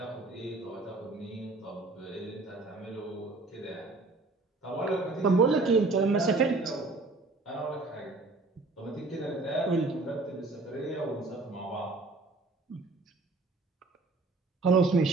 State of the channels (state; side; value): quieter; left; 3.4 dB